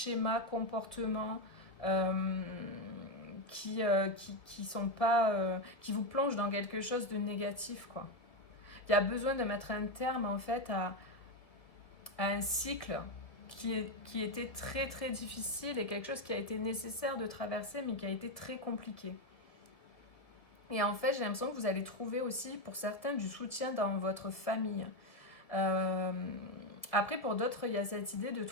comportements qui sont pas, qui vous plongent dans quelque chose de négatif, quoi. Il y a besoin de mettre un terme en fait à un cycle qui était très très difficile et quelque chose qui a été nécessaire de traverser mais qui a été très compliqué. Et en fait, j'ai l'impression que vous allez trouver aussi pour certains du soutien dans votre famille. Après, pour d'autres, il y a cette idée de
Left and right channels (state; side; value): late; right; 1.8 ms